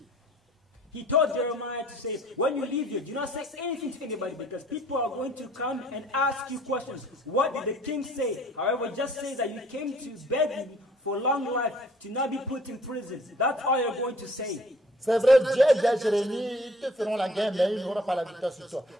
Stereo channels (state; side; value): normal; both; correlation 0.55